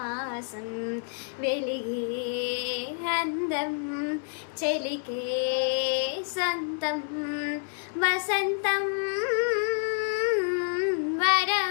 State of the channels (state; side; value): silent; right; 59 dB below the other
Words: వెలిగే అందం చెలికే సంతం వసంతం